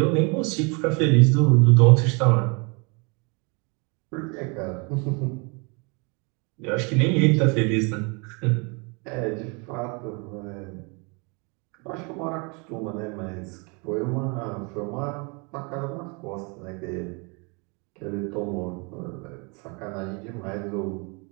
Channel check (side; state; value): left; quieter; 32.0 dB